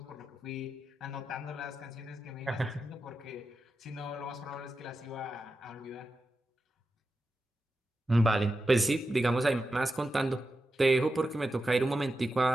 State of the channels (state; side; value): normal; both; correlation 0.90